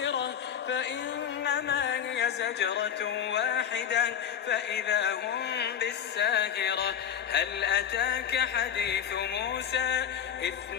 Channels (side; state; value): right; quieter; 9.0 dB